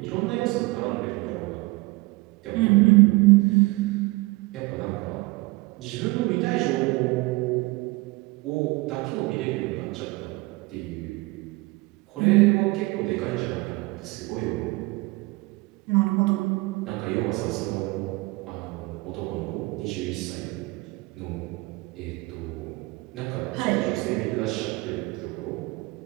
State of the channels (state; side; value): quieter; left; 23.3 dB